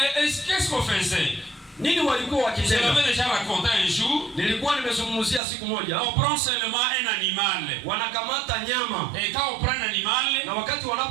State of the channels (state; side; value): drops out; left; at 5.4 s